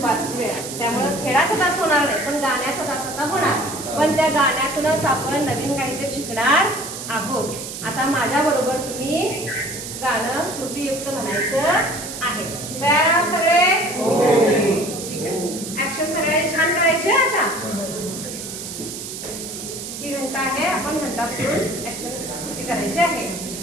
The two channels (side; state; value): right; noise; hiss, 9 dB below the sound